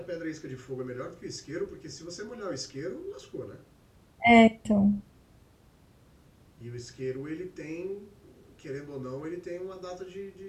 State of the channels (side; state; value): both; identical; correlation 1.00